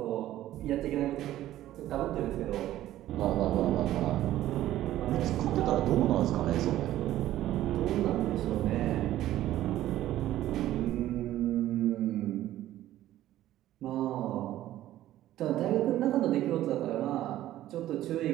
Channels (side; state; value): left; quieter; 13.8 dB